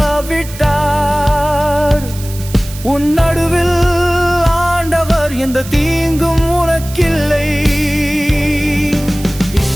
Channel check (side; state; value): right; noise; hiss, 15 dB below the sound